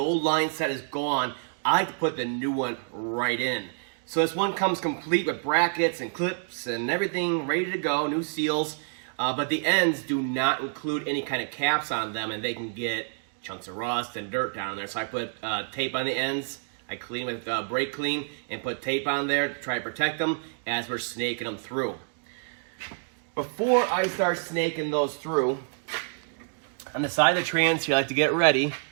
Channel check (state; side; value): silent; left; digital silence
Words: line set is gone, I like to put the new one right in. So this one comes complete with brackets and clips and everything ready to go, new seals, but the ends do not include any kind of caps on them, and they can get chunks of rust and dirt down there. So I put tape on the ends. I clean with brake clean and put tape on there to try to protect them as we're snaking them through. Before I start snaking those through, on the side of the trans here, I like to get ready.